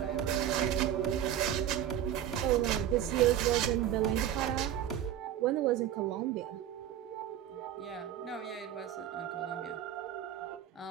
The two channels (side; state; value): left; quieter; 10.7 dB